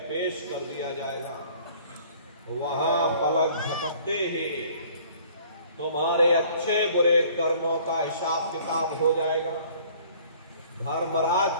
पेश कर दिया जाएगा। वहां पलक झपकते ही तुम्हारे अच्छे बुरे कर्मों का हिसाब किताब हो जाएगा। धर्मराज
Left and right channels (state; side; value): inverted; both; correlation -0.54